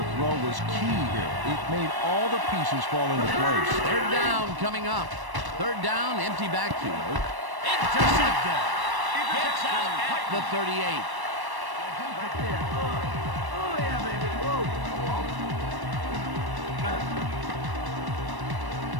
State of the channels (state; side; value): late; left; 1.1 ms